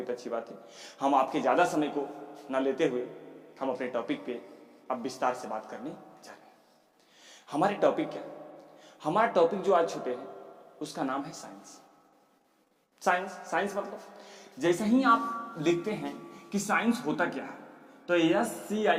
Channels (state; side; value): identical; both; correlation 1.00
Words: तो अच्छी बात है। हम आपके ज़्यादा समय को न लेते हुए हम अपने टॉपिक पे अब विस्तार से बात करने जा रहे हैं। हमारे टॉपिक क्या, हमारा टॉपिक जो आज छूटे हैं उसका नाम है साइंस। साइंस मतलब जैसे ही आप लिखते हैं कि साइंस होता क्या है तो SCIENCE